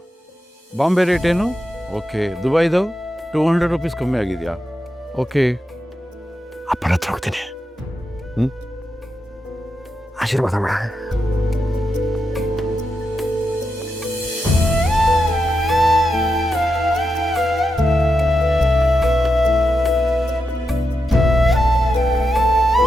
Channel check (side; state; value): both; normal; correlation 0.87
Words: ಬಾಂಬೆ ರೇಟ್ ಏನು? ಓಕೆ. ದುಬೈದು 200 ರೂಪೀಸ್ ಕಮ್ಮಿ ಆಗಿದೆಯಾ? ಓಕೆ. ಅಪ್ಪನ ಹತ್ರ ಹೋಗ್ತೀನಿ. ಆಶೀರ್ವಾದ ಮಾಡ.